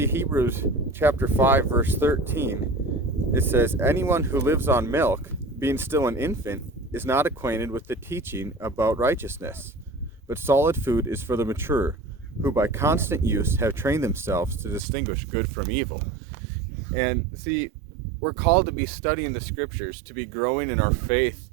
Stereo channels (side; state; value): left; drops out; at 14.8 s